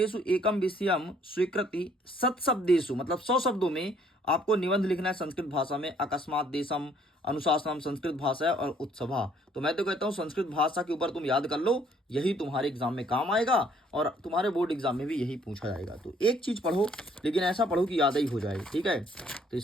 एकम विषयम स्वीकृति सत्शब्देषु, मतलब 100 शब्दों में आपको निबंध लिखना है संस्कृत भाषा में। अकस्मात देशम, अनुशासनम संस्कृत भाषा है, और उत्सभा। तो मैं तो कहता हूँ संस्कृत भाषा के ऊपर तुम याद कर लो, यही तुम्हारे एग्जाम में काम आएगा, और तुम्हारे बोर्ड एग्जाम में भी यही पूछा जाएगा। तो एक चीज पढ़ो, लेकिन ऐसा पढ़ो कि याद ही हो जाए, ठीक है। तो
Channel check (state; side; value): normal; both; correlation 0.63